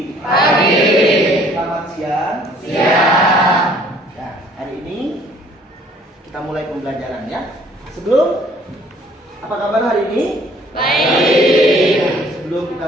Pagi. Selamat siang. Siang. Nah, hari ini kita mulai pembelajaran ya. Apa kabar hari ini? Baik. Sebelum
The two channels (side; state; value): both; normal; correlation 0.58